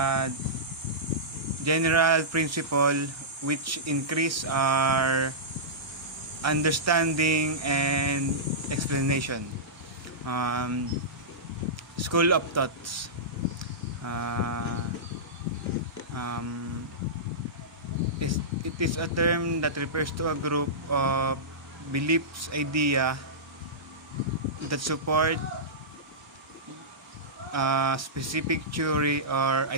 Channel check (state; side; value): normal; both; correlation -0.16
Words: general principle which increase our understanding and explanation. School of thoughts. Uh, um, it is a term that refers to a group of beliefs, idea that support a specific theory or